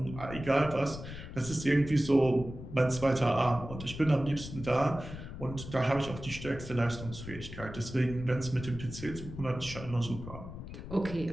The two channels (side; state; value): left; noise; rumble, 11 dB below the sound